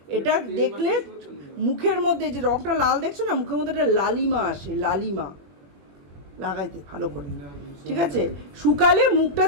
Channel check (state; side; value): late; left; 21 ms